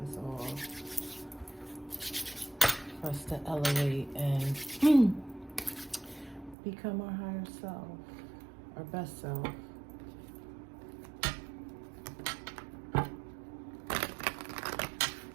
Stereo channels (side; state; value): left; drops out; at 6.6 s